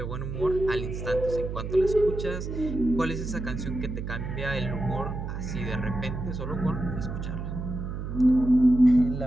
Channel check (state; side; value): noise; right; hum, 6 dB below the sound